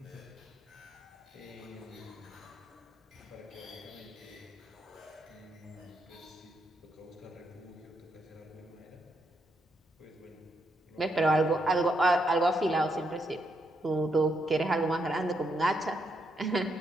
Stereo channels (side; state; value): both; normal; correlation 0.79